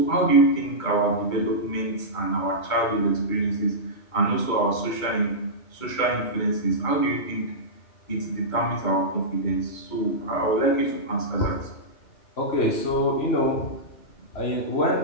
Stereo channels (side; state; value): right; late; 2.3 ms